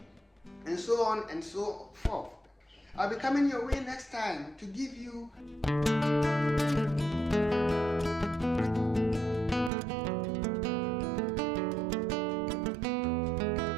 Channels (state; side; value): drops out; left; at 9.7 s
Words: And so on and so forth. I'll be coming your way next time to give you